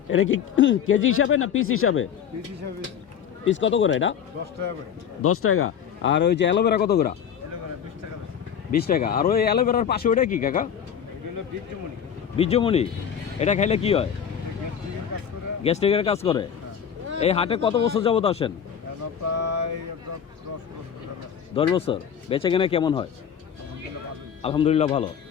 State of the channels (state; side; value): quieter; right; 8.2 dB